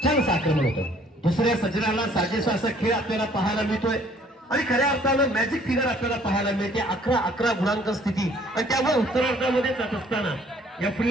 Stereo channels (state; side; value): normal; both; correlation 0.59